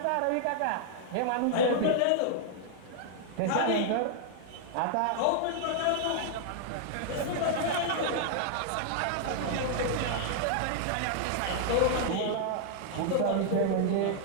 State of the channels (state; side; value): different; both; correlation -0.01